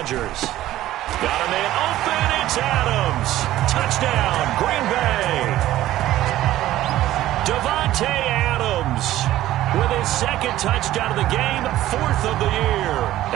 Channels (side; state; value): left; quieter; 14.4 dB